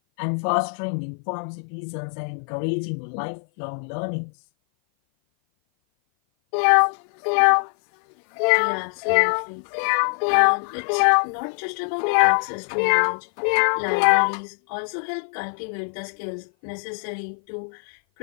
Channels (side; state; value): right; silent; 56 dB below the other